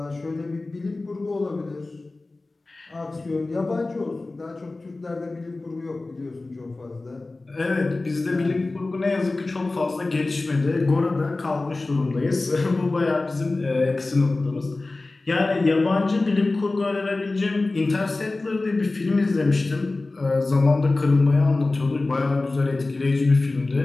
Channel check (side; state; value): right; quieter; 3.2 dB